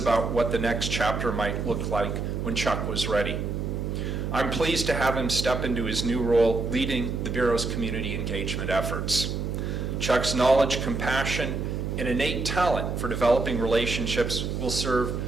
what the next chapter might look like when Chuck was ready. I'm pleased to have him step into his new role leading the Bureau's community engagement efforts. Chuck's knowledge, compassion, and innate talent for developing relationships will serve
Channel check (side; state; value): right; noise; hum, 3 dB below the sound